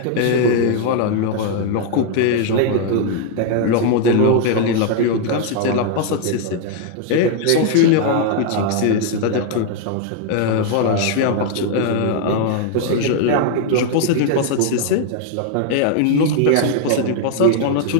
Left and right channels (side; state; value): both; different; correlation 0.00